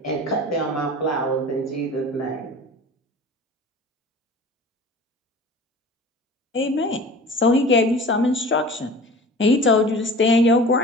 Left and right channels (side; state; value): both; normal; correlation 0.40